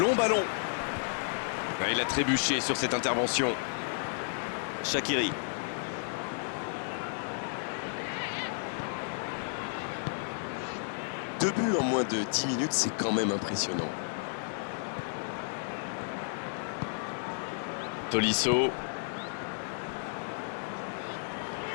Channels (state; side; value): silent; right; digital silence